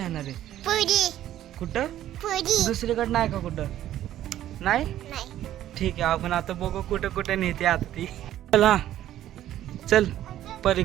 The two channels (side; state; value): left; quieter; 12.5 dB